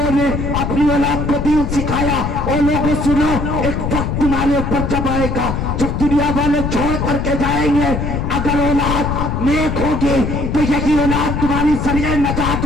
نے اپنی اولاد کو دین سکھایا؟ اور لوگوں سنو ایک وقت تمہارے اوپر جب آئے گا جب دنیا والے چھوڑ کر کے جائیں گے, اگر اولاد نیک ہوگی تو یہی اولاد تمہاری ذریعہ نجات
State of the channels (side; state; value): left; noise; rumble, 2 dB below the sound